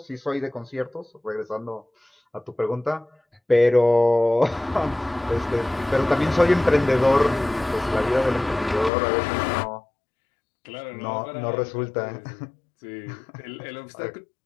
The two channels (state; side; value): drops out; right; at 8.9 s